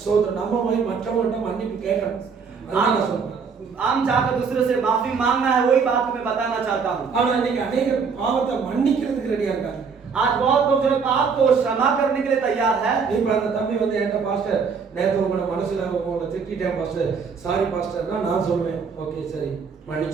ஸ்தோத்திரம், நம்ம போய் மற்றவங்கள்ட்ட மன்னிப்பு கேட்கணும். அதான் நான் சொல்றேன். आम जाकर दूसरे से माफी मांगना है, वही बात मैं बताना चाहता हूँ। ஆனா இன்னைக்கு अनेक பாவத்தை மன்னிக்கிறதுக்கு ரெடியா இருக்காங்க. आज बहुत लोग जो है पाप को क्षमा करने के लिए तैयार है। இப்ப அந்த தம்பி வந்து என்கிட்ட பாஸ்டர் நேத்து உங்களை மனசுல உங்களை திட்டிட்டேன் பாஸ்டர், சாரி பாஸ்டர்னா நான் சொல்லுவேன் ஓகே சரி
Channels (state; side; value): quieter; left; 5.6 dB